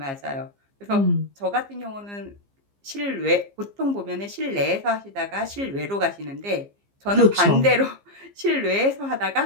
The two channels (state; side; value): late; left; 15 ms